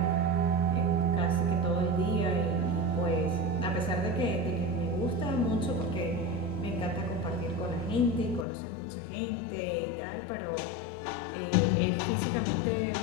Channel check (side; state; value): right; drops out; at 8.5 s